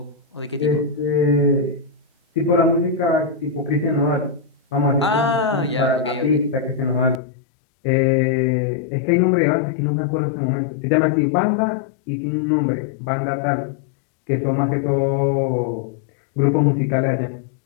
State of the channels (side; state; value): right; drops out; at 7.2 s